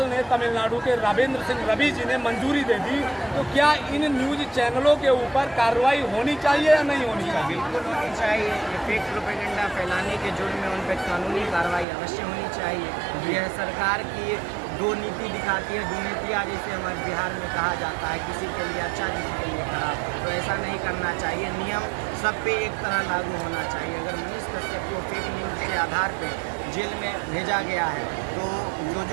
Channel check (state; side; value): drops out; left; at 11.9 s